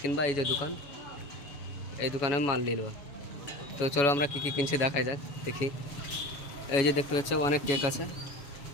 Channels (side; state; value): right; late; 7.1 ms